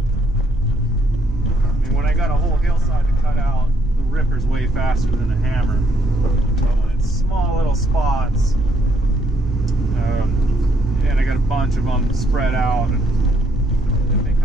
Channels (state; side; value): normal; both; correlation 0.70